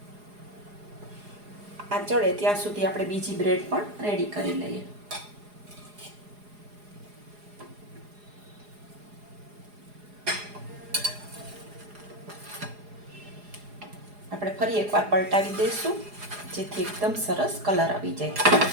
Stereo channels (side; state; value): left; late; 4.8 ms